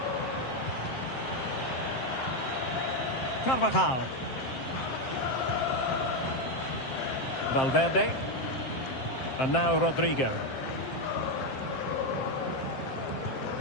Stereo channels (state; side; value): late; right; 7.6 ms